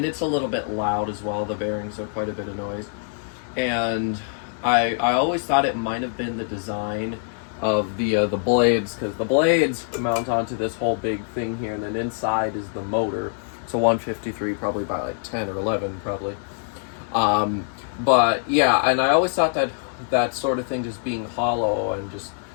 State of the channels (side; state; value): right; silent; digital silence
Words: it's a little bit loud as well. The bearings are quite a bit of noise. and I always thought it might have been the design of the blades, because the blades mount onto this whole big thing here, and then inside is the motor. It's a 153, probably by like 10 or 11, probably. But yeah, and I always thought that that sort of thing just being hollow and just